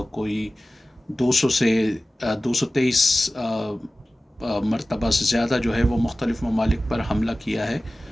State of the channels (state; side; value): normal; both; correlation 0.96